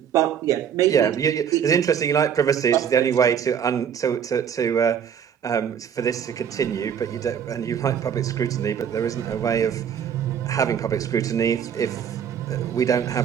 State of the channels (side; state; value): left; quieter; 8.2 dB